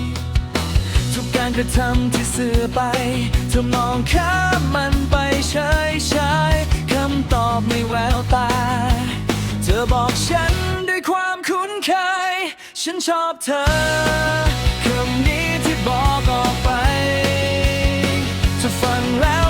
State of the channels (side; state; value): both; identical; correlation 1.00